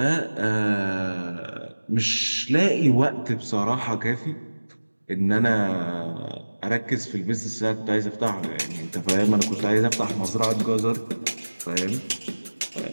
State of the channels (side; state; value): both; inverted; correlation -1.00